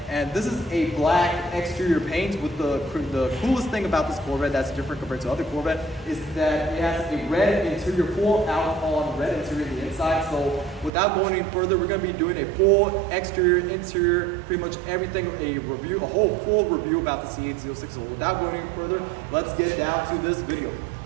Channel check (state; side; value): drops out; left; at 10.9 s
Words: And this is a black exterior paint with the coolest thing about this Corvette that's different compared to other Corvette is that it has a red interior, full out on red interior on the inside. So without going any further, we're going to be doing a full exterior, interior, pretty much everything, a whole full review about the C8 Z06. So without going any further, let's get down to this video.